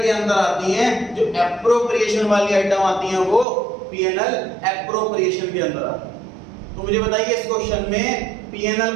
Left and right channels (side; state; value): left; drops out; at 3.5 s